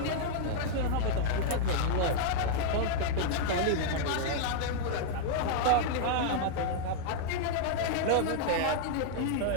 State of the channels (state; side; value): different; both; correlation -0.01